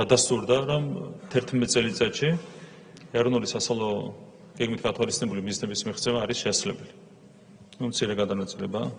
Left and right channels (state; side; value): identical; both; correlation 1.00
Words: რომ 11 წელიწადში ეროვნული სასწავლო გეგმით გათვალისწინებული მიზნების მიღწევა არის შესაძლებელი. მცირე გადანაწილება